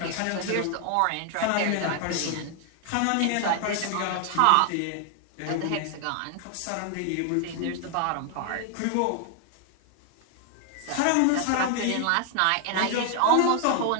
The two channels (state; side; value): different; both; correlation 0.00